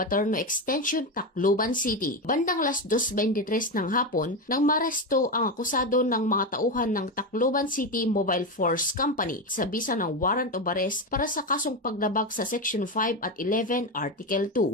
Extension, Tacloban City. Bandang alas 2:23 ng hapon nang maresto ang akusado ng mga tauhan ng Tacloban City Mobile Force Company sa bisa ng warrant of arrest para sa kasong paglabag sa Section 5 at 11 Article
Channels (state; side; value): normal; both; correlation 0.14